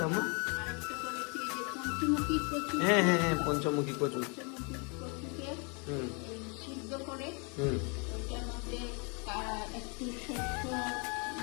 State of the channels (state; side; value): quieter; right; 34.3 dB